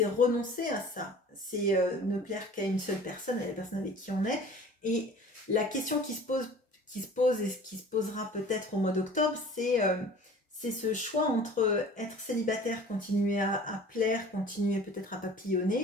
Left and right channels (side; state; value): both; normal; correlation 0.45